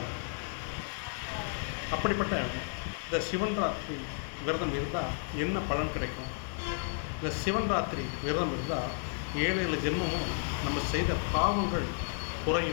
அப்படிப்பட்ட இந்த சிவன் ராத்திரி விரதம் இருந்தால் என்ன பலன் கிடைக்கும்? இந்த சிவன் ராத்திரி விரதம் இருந்தால் 7 ஜென்மமும் நம்ம செய்த பாவங்கள்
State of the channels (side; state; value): right; silent; 56 dB below the other